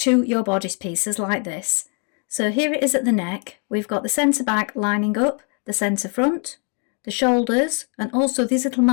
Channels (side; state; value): right; quieter; 39.4 dB